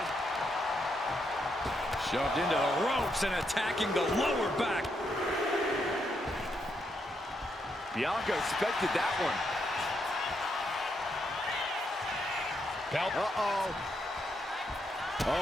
Shoved into the ropes and attacking the lower back. Bianca expected that one. Belt. Uh-oh. Oh,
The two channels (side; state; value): both; normal; correlation 0.79